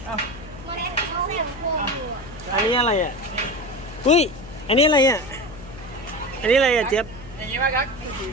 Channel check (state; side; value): noise; left; hum, 16 dB below the sound